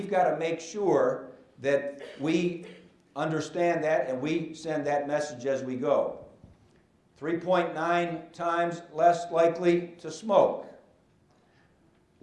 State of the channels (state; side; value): identical; both; correlation 1.00